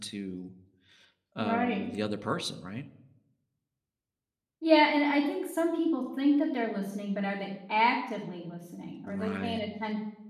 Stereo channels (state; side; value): identical; both; correlation 1.00